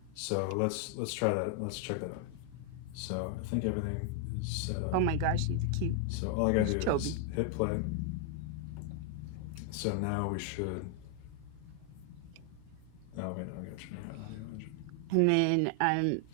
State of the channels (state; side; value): different; both; correlation 0.00